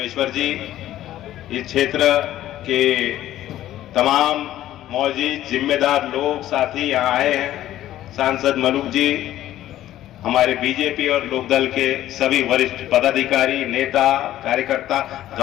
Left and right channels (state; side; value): quieter; right; 13.4 dB